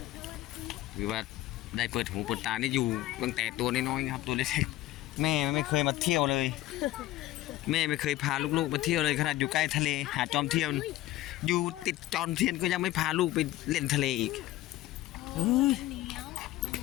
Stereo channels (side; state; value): right; quieter; 15.7 dB